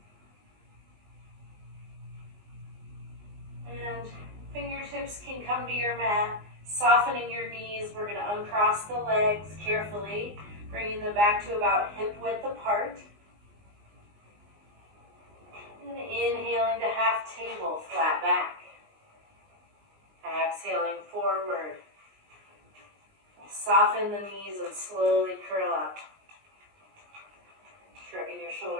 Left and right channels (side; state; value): left; late; 19 ms